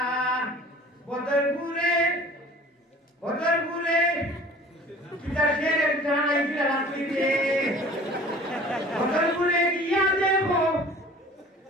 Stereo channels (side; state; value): both; normal; correlation 0.46